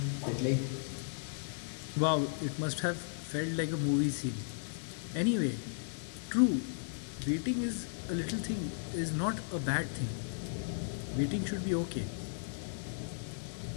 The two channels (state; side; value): silent; right; digital silence